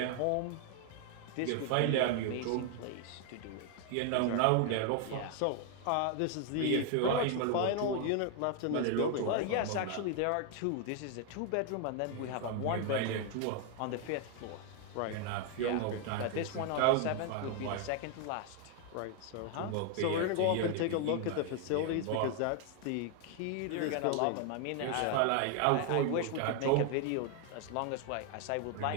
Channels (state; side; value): different; both; correlation 0.00